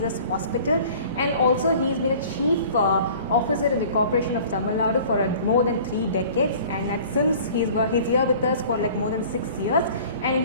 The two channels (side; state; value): both; inverted; correlation -0.47